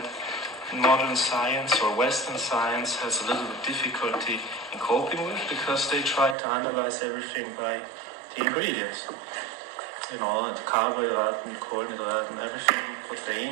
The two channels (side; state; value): left; drops out; at 6.4 s